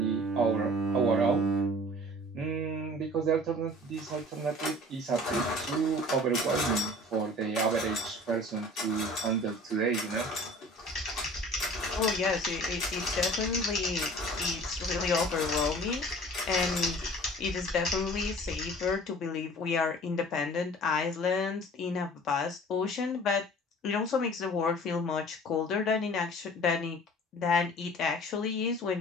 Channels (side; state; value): both; normal; correlation 0.45